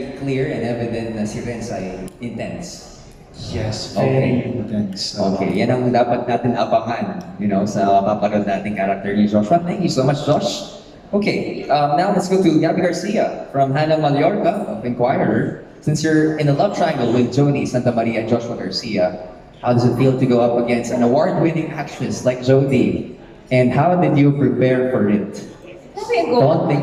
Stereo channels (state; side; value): identical; both; correlation 1.00